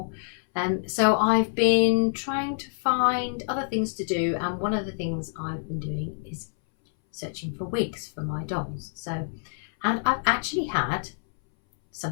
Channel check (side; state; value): right; silent; 60 dB below the other